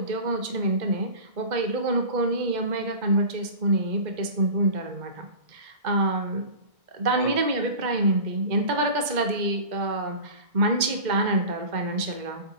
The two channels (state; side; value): late; left; 2.1 ms